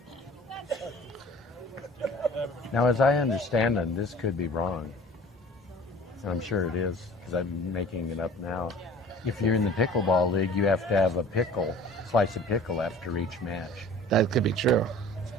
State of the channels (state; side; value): normal; both; correlation 0.46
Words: Now, as I understand it, this could be wrong. And I'm sure it is, because I'm making it up now. If you're in the pickleball league, you have to have a pickle, slice of pickle after each match. That could be true.